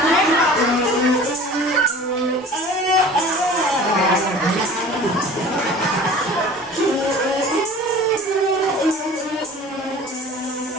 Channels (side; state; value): both; normal; correlation 0.43